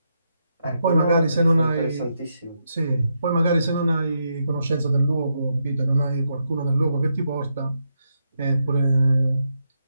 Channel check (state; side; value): inverted; both; correlation -0.81